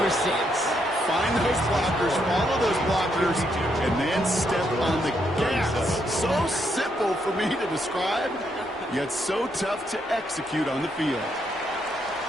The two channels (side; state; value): both; normal; correlation 0.77